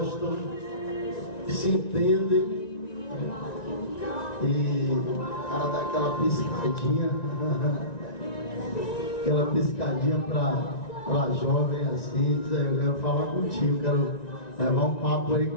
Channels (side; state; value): right; late; 1.9 ms